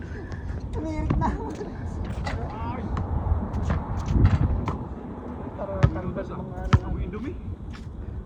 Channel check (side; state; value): both; identical; correlation 1.00